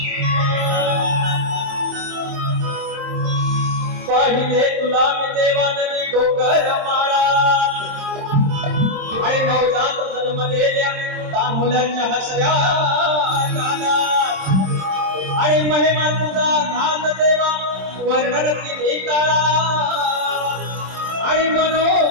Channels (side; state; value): left; late; 27 ms